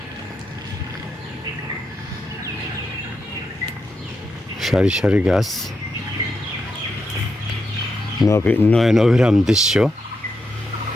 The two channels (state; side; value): normal; both; correlation 0.84